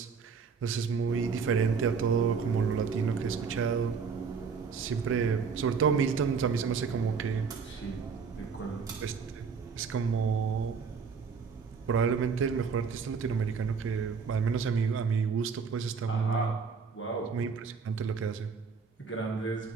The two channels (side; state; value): left; quieter; 5.6 dB